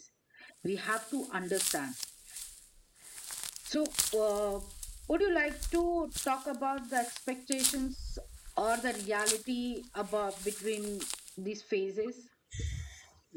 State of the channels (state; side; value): identical; both; correlation 1.00